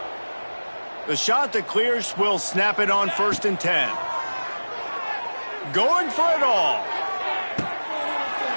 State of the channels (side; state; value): both; inverted; correlation -1.00